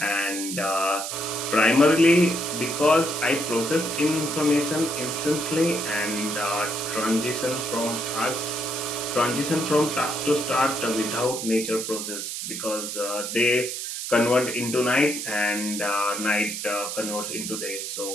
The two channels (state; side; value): noise; right; hiss, 5 dB below the sound